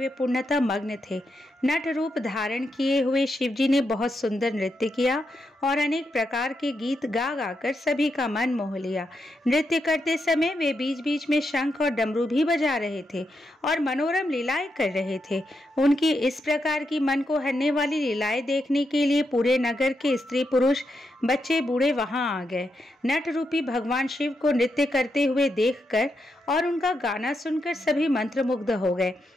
पूर्णतः मग्न थे। नट रूप धारण किए हुए शिवजी ने बहुत सुंदर नृत्य किया और अनेक प्रकार के गीत गा गाकर सभी का मन मोह लिया। नृत्य करते समय वे बीच बीच में शंख और डमरू भी बजा रहे थे और मनोरम लीलाएं कर रहे थे। उनकी इस प्रकार की मन को हरने वाली लीलाएं देखने के लिए पूरे नगर के स्त्री पुरुष, बच्चे बूढ़े वहां आ गए। नट रूपी भगवान शिव को नृत्य करते हुए देखकर और उनका गाना सुनकर सभी मंत्रमुग्ध हो गए।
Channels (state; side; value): normal; both; correlation 0.83